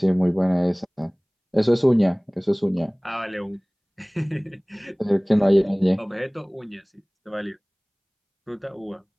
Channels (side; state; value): both; identical; correlation 1.00